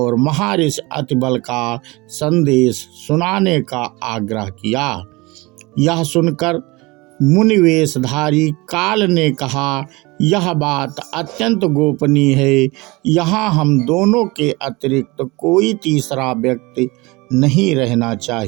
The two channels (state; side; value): quieter; left; 23.5 dB